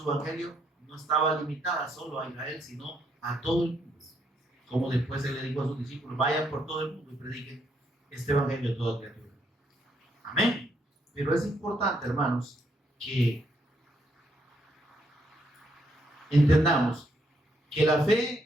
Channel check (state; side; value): normal; both; correlation 0.74